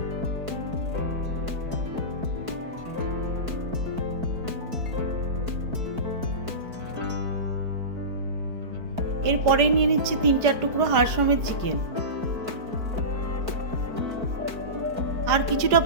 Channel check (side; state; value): left; late; 4.5 ms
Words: এরপরেই নিয়ে নিচ্ছি 3-4 টুকরো হাড় সমেত চিকেন আর কিছুটা